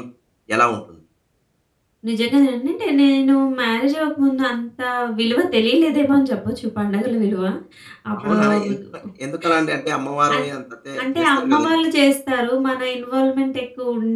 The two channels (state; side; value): identical; both; correlation 1.00